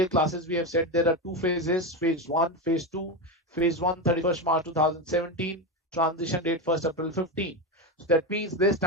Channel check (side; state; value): both; normal; correlation 0.15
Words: classes we have said there are two phases: phase 1, phase 2. Phase 1 31st March 2017, transition date 1st April 15. So that means this